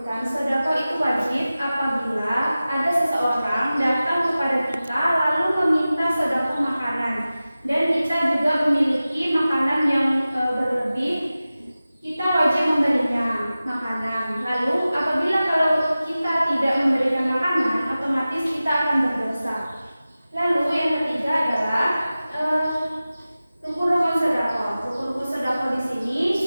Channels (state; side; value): inverted; both; correlation -0.96